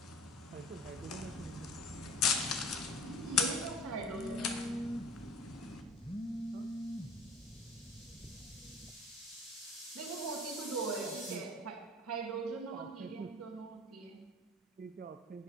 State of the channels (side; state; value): both; normal; correlation 0.44